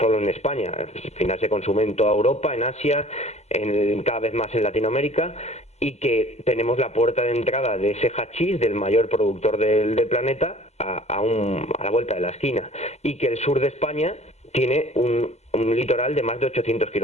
en España. Al final se consume en toda Europa, en Asia, cada vez más en Latinoamérica, y que tenemos la puerta de entrada de ese hachís, del mayor productor del planeta, a la vuelta de la esquina, y que el sur de España tiene un litoral de más de 800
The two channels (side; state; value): right; late; 0.32 ms